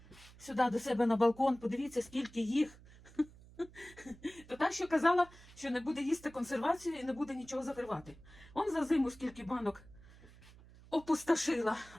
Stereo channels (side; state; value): right; noise; hum, 22 dB below the sound